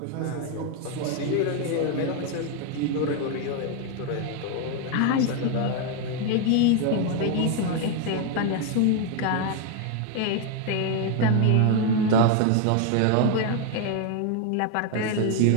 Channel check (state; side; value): different; both; correlation 0.00